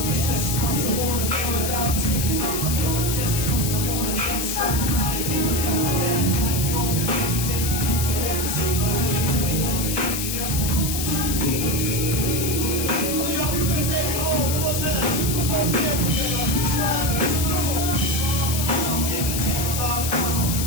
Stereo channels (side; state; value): left; noise; hiss, 2 dB below the sound